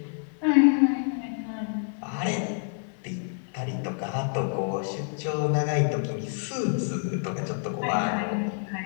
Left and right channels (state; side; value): silent; right; 59 dB below the other